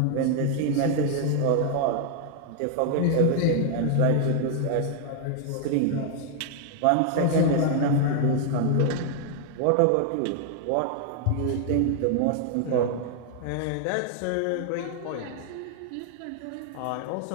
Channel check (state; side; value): different; both; correlation 0.00